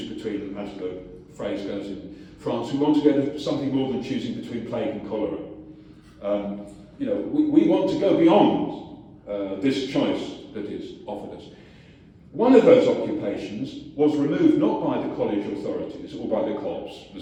between, as the phrase goes in France who want to go to something more than choosing between plague and cholera. We want to go beyond this choice that is offered us. One of those occupations was removed not by the college authorities or by the cops. The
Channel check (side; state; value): both; identical; correlation 1.00